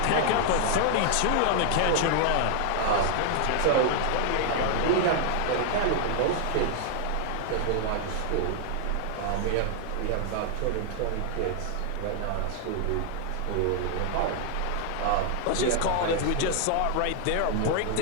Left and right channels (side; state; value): both; different; correlation 0.00